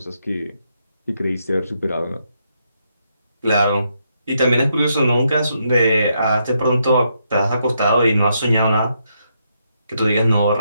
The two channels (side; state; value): both; inverted; correlation -0.78